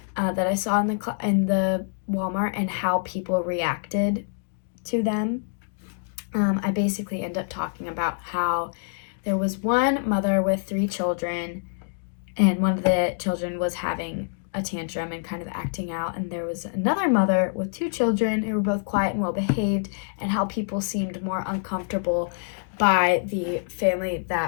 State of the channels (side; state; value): right; silent; digital silence